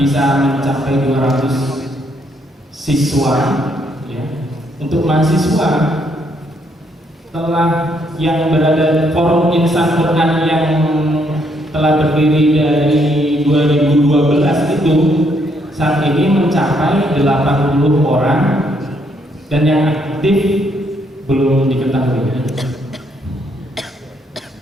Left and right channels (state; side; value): normal; both; correlation 0.72